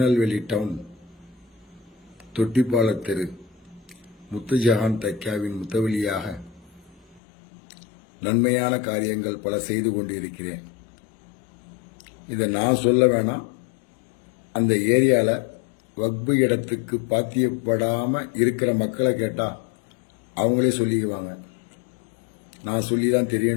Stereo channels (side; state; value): right; drops out; at 7.2 s